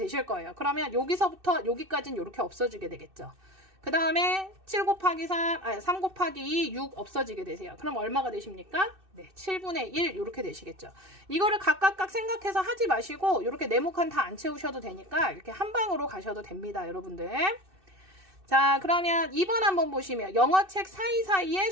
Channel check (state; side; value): late; left; 2.6 ms